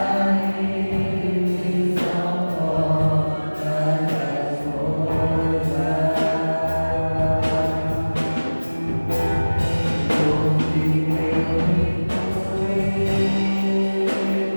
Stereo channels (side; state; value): both; inverted; correlation -1.00